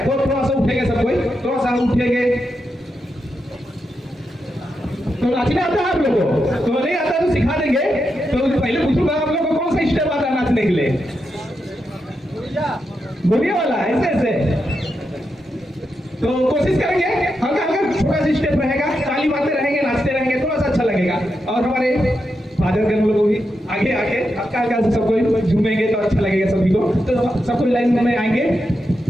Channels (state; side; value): normal; both; correlation 0.86